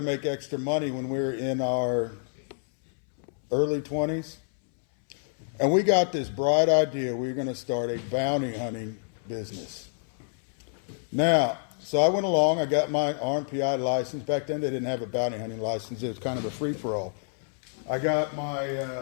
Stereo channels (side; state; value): right; silent; 59 dB below the other